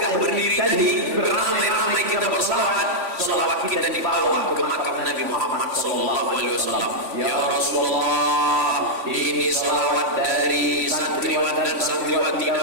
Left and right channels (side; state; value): left; late; 3.5 ms